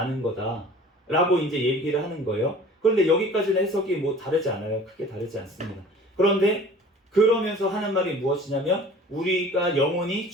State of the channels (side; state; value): both; normal; correlation 0.46